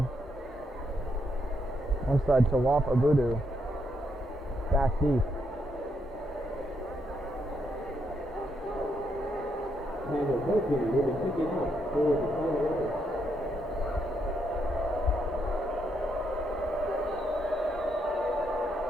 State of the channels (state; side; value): normal; both; correlation 0.77